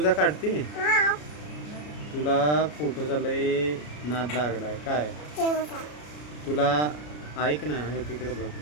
काढते? तुला फोटोचा लय नाद लागलाय काय? तुला ऐक ना, हे तिकडे बघ,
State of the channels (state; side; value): late; right; 33 ms